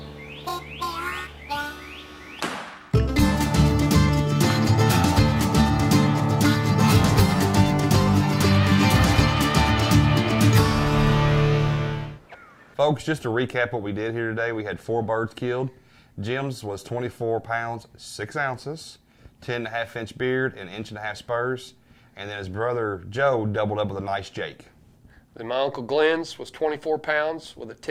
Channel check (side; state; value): both; identical; correlation 1.00